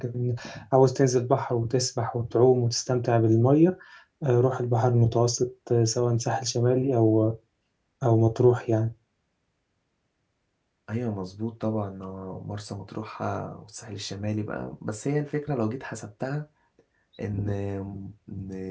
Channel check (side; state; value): both; identical; correlation 1.00